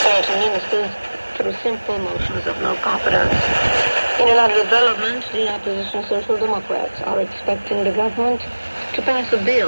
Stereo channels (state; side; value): inverted; both; correlation -1.00